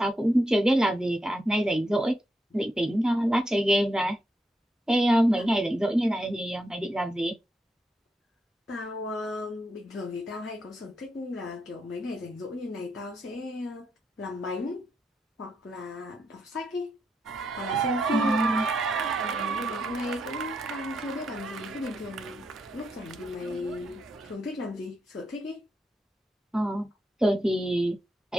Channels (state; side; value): normal; both; correlation 0.82